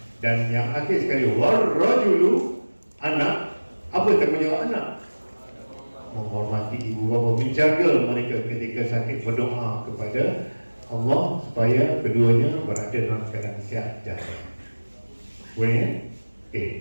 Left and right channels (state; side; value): inverted; both; correlation -1.00